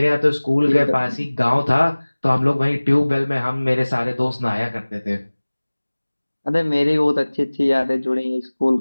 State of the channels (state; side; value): inverted; both; correlation -1.00